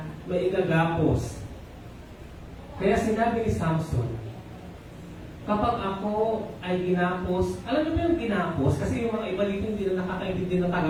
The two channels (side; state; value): both; identical; correlation 1.00